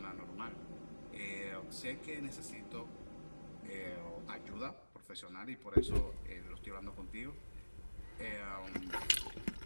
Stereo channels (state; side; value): inverted; both; correlation -1.00